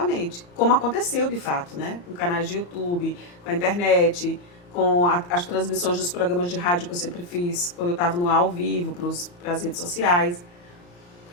como aconteceu de fato, né? Com canais de YouTube, com a internet, com as transmissões dos programas de rádio que eu sempre fiz, quando eu estava no ar ao vivo, para as redes sociais.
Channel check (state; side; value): late; right; 34 ms